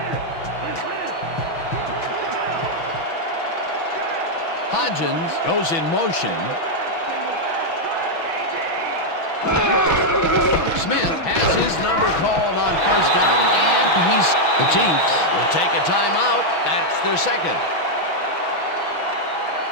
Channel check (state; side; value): late; right; 6.1 ms